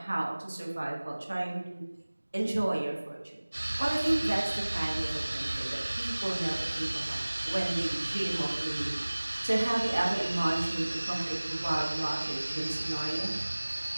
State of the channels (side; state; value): both; inverted; correlation -1.00